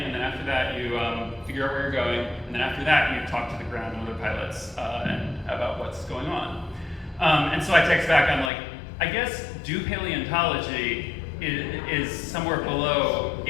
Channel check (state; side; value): drops out; right; at 8.5 s